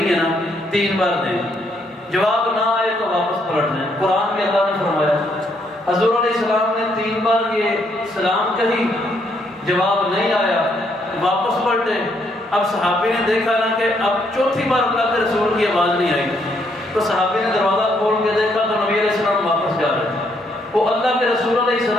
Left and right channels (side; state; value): both; normal; correlation 0.72